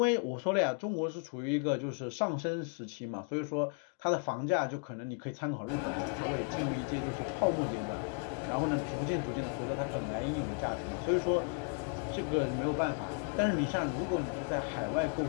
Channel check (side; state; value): right; quieter; 38.2 dB